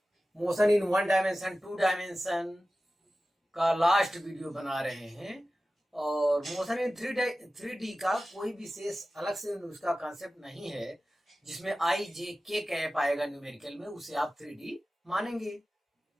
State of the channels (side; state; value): both; normal; correlation 0.95